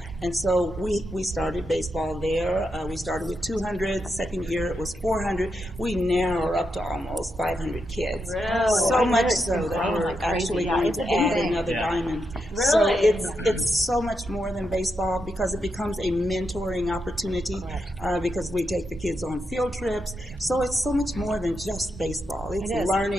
And so we started baseball there. We started with 200. The second year it was 400. We now are up to almost 500 kids. Really? So much so that we're actually going to add another diamond. So it's so much more than baseball because it becomes a mentoring opportunity because we take the kids on field trips. So it's so much more than just baseball. It's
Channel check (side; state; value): both; normal; correlation 0.84